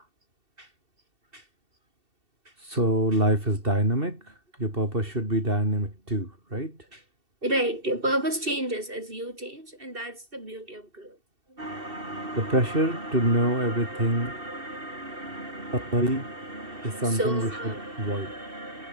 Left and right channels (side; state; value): left; late; 2.7 ms